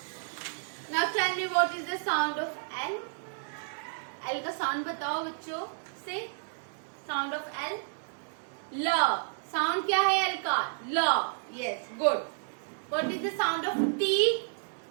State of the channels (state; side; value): silent; left; digital silence